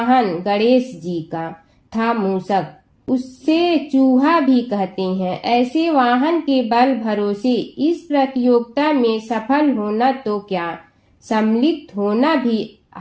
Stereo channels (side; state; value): both; identical; correlation 1.00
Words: गणेश जी का था मूषक, उससे चूहा भी कहते हैं। ऐसे वाहन के बल भरोसे इस प्रतियोगिता में सफल होना तो क्या, सम्मिलित होना भी